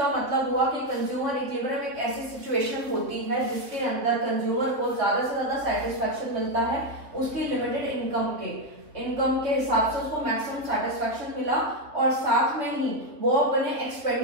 मतलब हुआ कि कंज्यूमर इक्विलिब्रियम एक ऐसी सिचुएशन होती है जिसके अंदर कंज्यूमर को ज्यादा से ज्यादा सेटिस्फैक्शन मिलता है उसकी लिमिटेड इनकम के हिसाब से उसको मैक्सिमम सेटिस्फैक्शन मिला और साथ में ही वो अपने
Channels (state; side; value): late; left; 3.3 ms